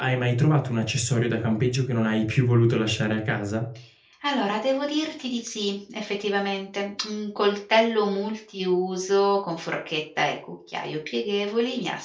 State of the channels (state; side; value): identical; both; correlation 1.00